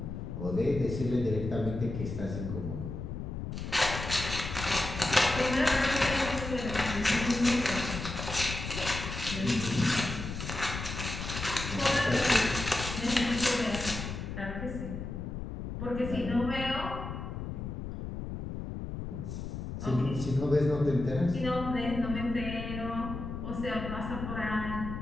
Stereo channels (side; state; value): left; noise; rumble, 6 dB below the sound